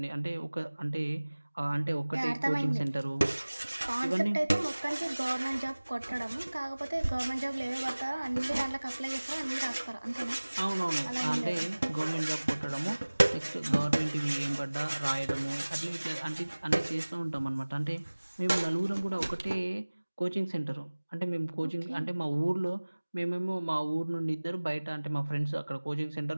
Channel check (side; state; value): both; inverted; correlation -1.00